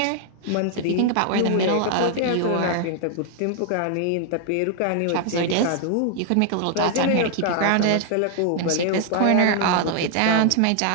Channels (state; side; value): different; both; correlation 0.00